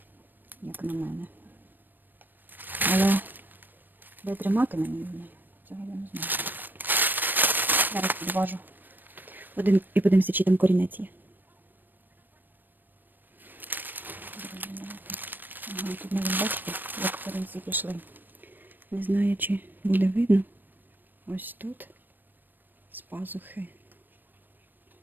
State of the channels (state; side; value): late; left; 0.092 ms